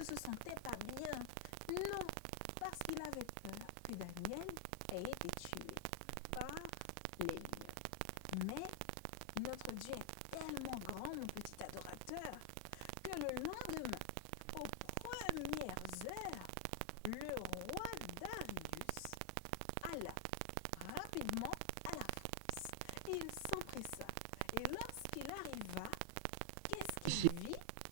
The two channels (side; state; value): both; different; correlation 0.00